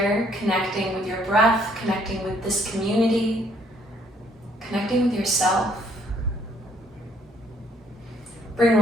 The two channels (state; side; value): normal; both; correlation 0.65